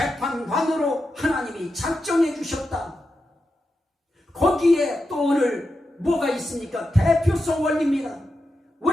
하나님이 작정해 주셨다. 거기에 또 오늘 뭐가 있습니까? 대표성 원리입니다.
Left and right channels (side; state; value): both; normal; correlation 0.88